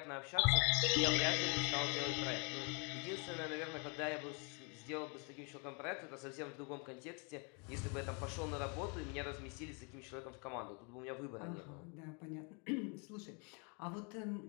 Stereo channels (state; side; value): quieter; right; 35.0 dB